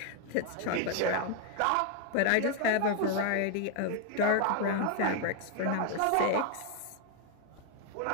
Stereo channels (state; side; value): different; both; correlation 0.00